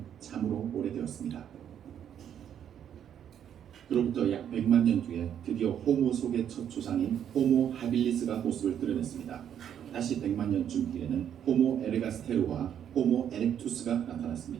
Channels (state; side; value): quieter; left; 9.3 dB